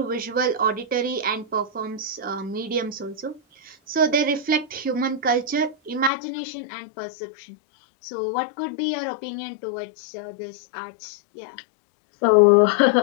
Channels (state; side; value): drops out; right; at 6.1 s